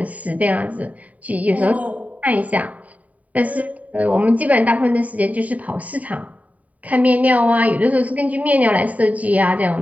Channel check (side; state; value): left; late; 0.070 ms